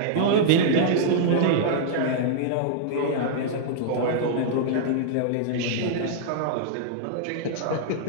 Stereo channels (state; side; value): different; both; correlation -0.01